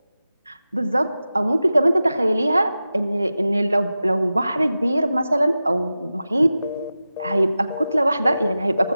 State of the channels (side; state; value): both; inverted; correlation -0.94